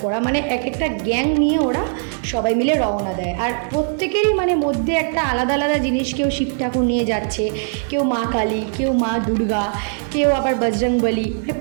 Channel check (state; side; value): silent; left; 66 dB below the other